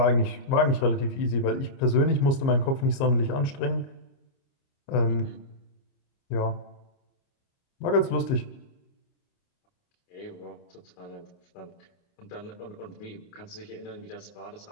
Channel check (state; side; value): late; right; 29 ms